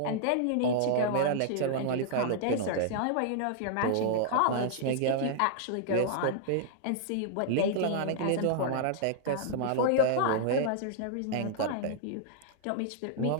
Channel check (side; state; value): both; different; correlation -0.01